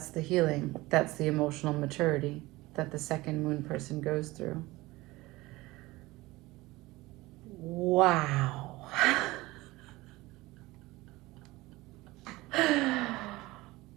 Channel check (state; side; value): quieter; left; 20.1 dB